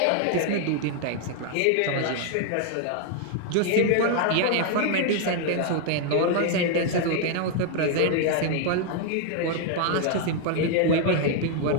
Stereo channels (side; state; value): both; different; correlation 0.00